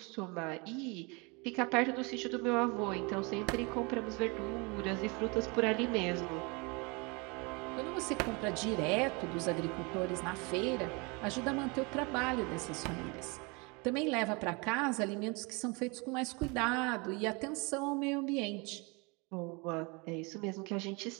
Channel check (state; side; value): quieter; left; 29.0 dB